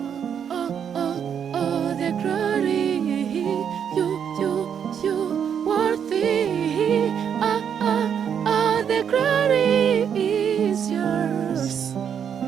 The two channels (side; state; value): left; quieter; 8.0 dB